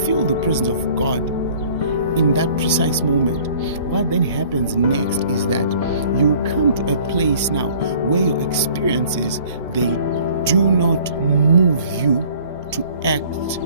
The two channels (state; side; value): inverted; both; correlation -0.53